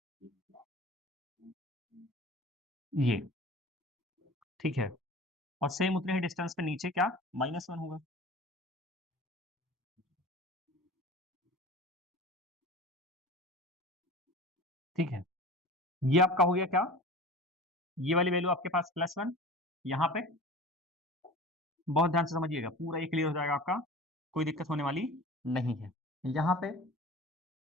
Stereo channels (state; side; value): normal; both; correlation 0.38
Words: ये, ठीक है। और सेम उतने ही डिस्टेंस पे नीचे क्या, माइनस वन होगा, ठीक है। ये आपका हो गया क्या, ये वाली वैल्यू आपके पास प्लस वन, यहाँ पे बहुत ध्यान से समझिएगा, पूरा ये क्लियर हो जाएगा आपका, कोई दिक्कत होने वाली नहीं है। यहाँ पे